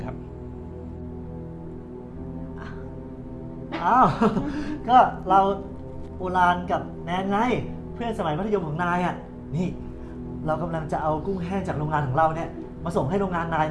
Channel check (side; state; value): both; identical; correlation 1.00